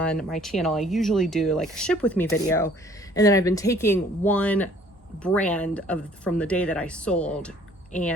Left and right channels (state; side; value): normal; both; correlation 0.56